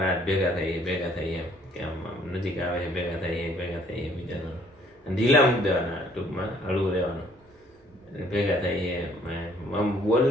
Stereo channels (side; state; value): both; normal; correlation 0.62